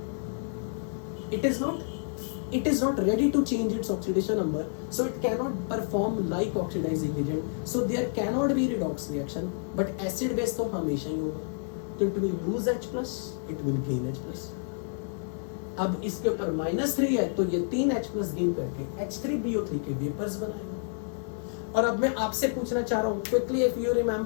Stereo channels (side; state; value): right; silent; digital silence